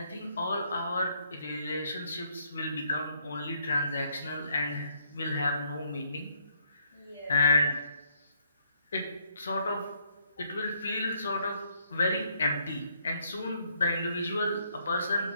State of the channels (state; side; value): inverted; both; correlation -0.70